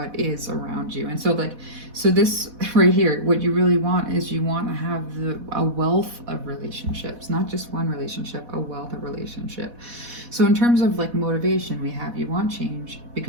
is around you. And so this right here, what you really want is you want to have a wealth of relationships, not just one relationship, a wealth of relationship. So in terms of like motivation, you want change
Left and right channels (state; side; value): late; left; 4.1 ms